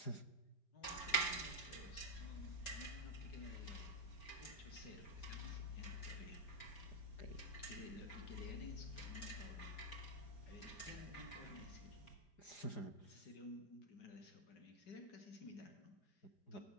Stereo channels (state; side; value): late; right; 4.6 ms